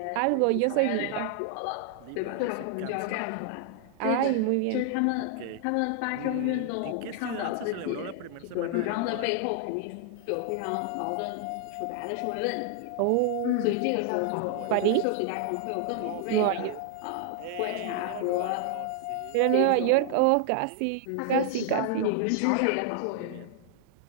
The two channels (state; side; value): different; both; correlation 0.00